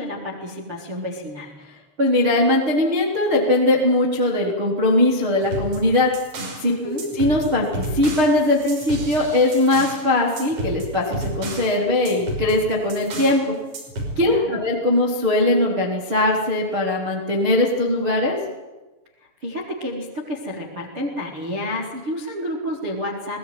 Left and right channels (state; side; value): late; left; 6.6 ms